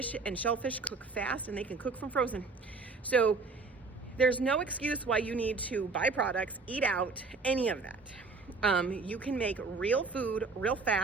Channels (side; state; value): left; quieter; 4.1 dB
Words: and shellfish cook fast and they can cook from frozen. So there's no excuse why you need to buy products, eat out, any of that. You can make real food, real